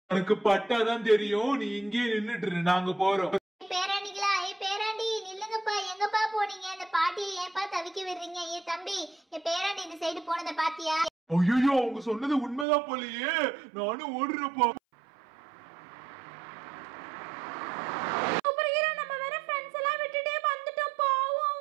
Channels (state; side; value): drops out; left; at 12.7 s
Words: எனக்கு பட்டாதான் தெரியும். நீ இங்கே நின்னுட்டு, நாங்க போறோம். பேராண்டிகளா, பேராண்டி நில்லுங்கப்பா. எங்கப்பா போனீங்க? இந்த பாட்டியை ஏன்பா தவிக்க விடுறீங்க? தம்பி, பேராண்டி இந்த சைடு போனதை பாத்தியா? ஐயோ, அவங்க சொன்னது உண்மைதான் போலயே. நானும் ஓடுறப்பா.